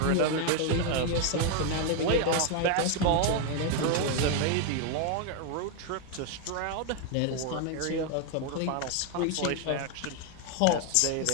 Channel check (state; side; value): different; both; correlation 0.01